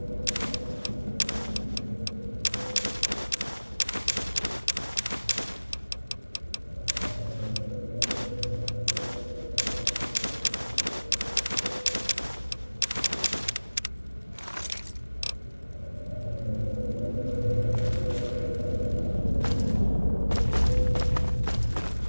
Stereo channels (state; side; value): inverted; both; correlation -1.00